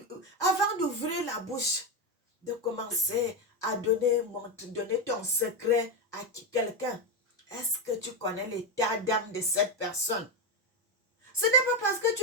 la bouche, de commencer à donner ton secret à quelqu'un, est-ce que tu connais l'état d'âme de cette personne? Ce n'est pas parce que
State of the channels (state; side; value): normal; both; correlation 0.10